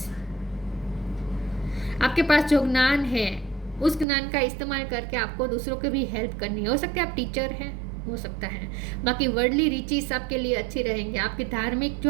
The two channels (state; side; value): drops out; left; at 4.0 s